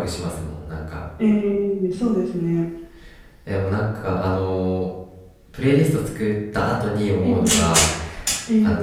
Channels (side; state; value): both; identical; correlation 1.00